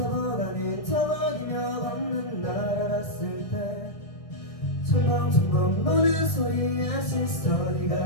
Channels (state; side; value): late; right; 1.6 ms